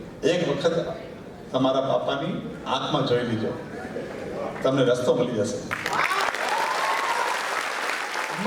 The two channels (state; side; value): identical; both; correlation 1.00